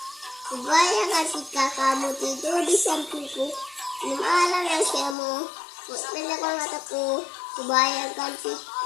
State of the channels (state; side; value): drops out; right; at 5.2 s